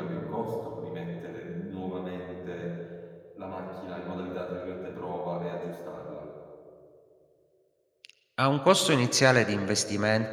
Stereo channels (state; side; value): identical; both; correlation 1.00